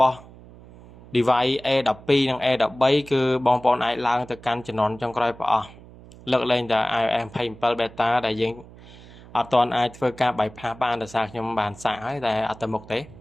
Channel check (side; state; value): right; noise; hum, 20 dB below the sound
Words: បស់ device A12 និង A13 គឺបងប្អូនអាចឡើងទៅកាន់ជំនាន់ចុងក្រោយប្រអស់លើកលែងតែ iOS 27 beta ដែលយើងអត់ទាន់អាចធ្វើការ bypass បានដោយសារខ្ញុំបានសាកហើយតែអត់ទៅមុខទេ